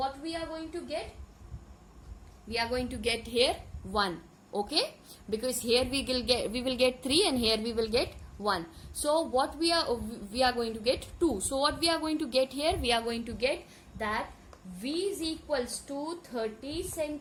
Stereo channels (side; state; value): both; identical; correlation 1.00